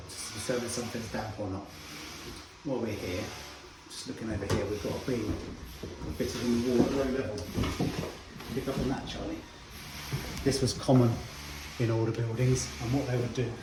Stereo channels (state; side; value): identical; both; correlation 1.00